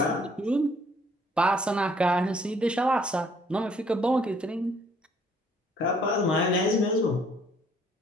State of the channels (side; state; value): both; normal; correlation 0.62